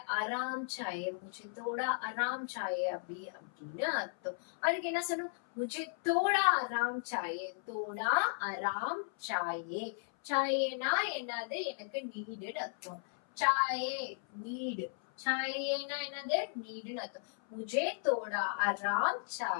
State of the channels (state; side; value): silent; right; 54 dB below the other